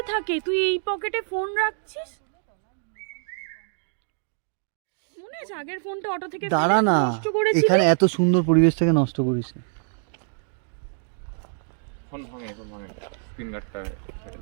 থাকে? তুই এই পকেটে ফোন রাখছিস? মনে আছে আগের ফোনটা অটো থেকে দাঁড়া ফেলে না, নষ্ট করেছিলি? এখানে এত সুন্দর পরিবেশটাকে নষ্ট করিস না। ফোন ভাঙে, ফোন ভাঙে, স্ক্রিন গার্ডটা ছেড়ে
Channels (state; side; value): silent; left; digital silence